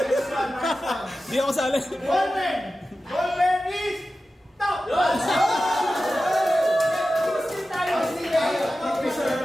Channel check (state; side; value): normal; both; correlation 0.94